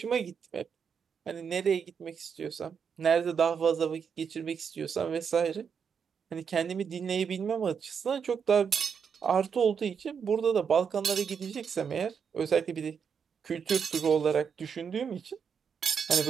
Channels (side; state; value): left; quieter; 6.7 dB